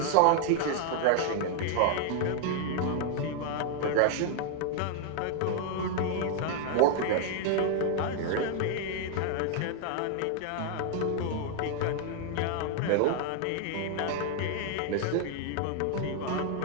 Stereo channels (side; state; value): both; different; correlation 0.00